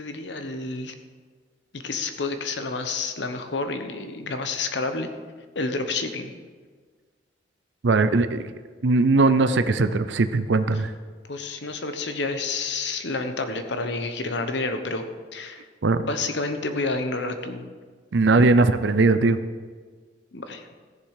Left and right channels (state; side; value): normal; both; correlation 0.39